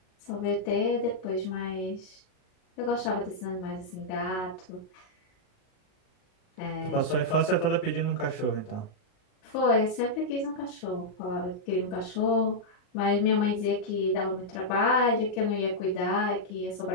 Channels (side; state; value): right; late; 38 ms